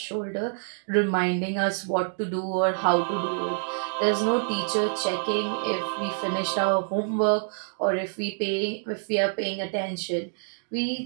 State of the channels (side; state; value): left; silent; digital silence